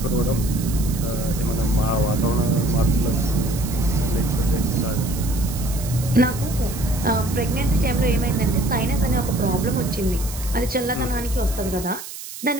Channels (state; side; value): noise; right; hiss, 11 dB below the sound